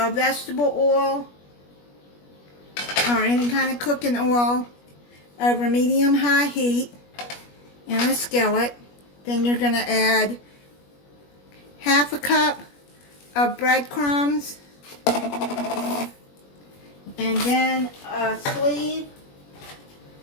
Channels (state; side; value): late; right; 21 ms